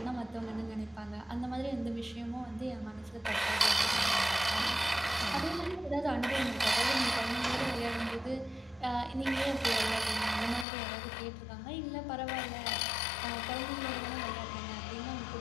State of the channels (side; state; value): right; drops out; at 10.7 s